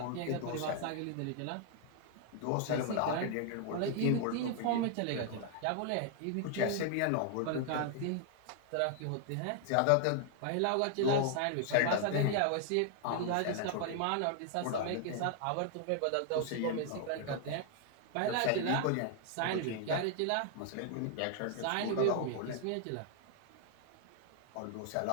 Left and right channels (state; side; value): different; both; correlation 0.00